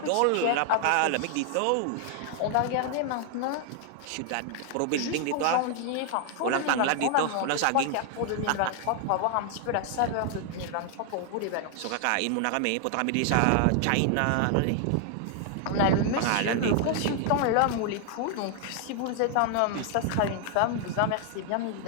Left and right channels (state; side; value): different; both; correlation 0.00